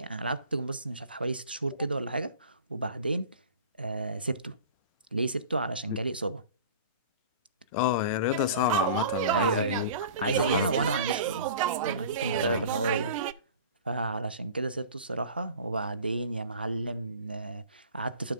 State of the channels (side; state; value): both; inverted; correlation -0.41